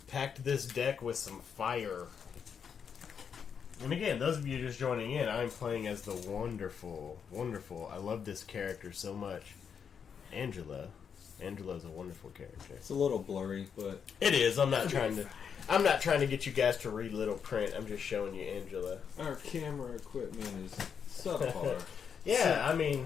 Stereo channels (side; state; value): right; quieter; 7.1 dB